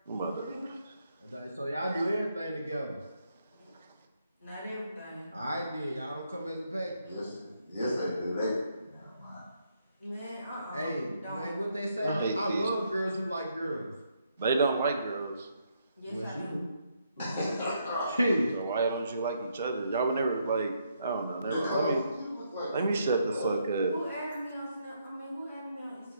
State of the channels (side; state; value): both; inverted; correlation -0.75